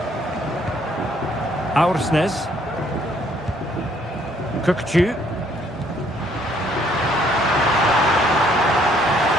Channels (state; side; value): normal; both; correlation 0.65